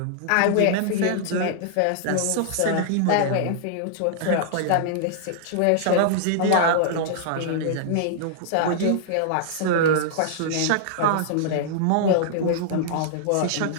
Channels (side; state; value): both; different; correlation -0.01